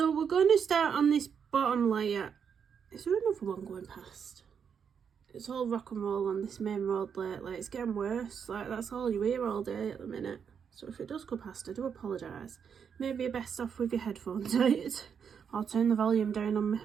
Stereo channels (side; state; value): left; quieter; 7.1 dB